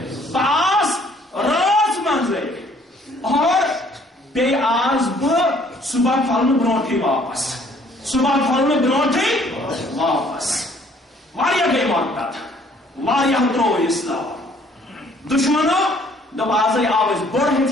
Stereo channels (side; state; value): both; normal; correlation 0.60